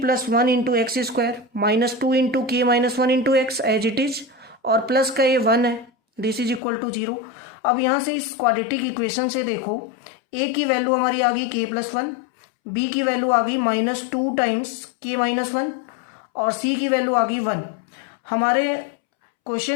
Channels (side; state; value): right; drops out; at 6.6 s